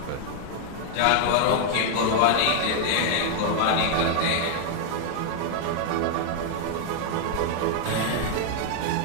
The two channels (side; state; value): both; different; correlation 0.00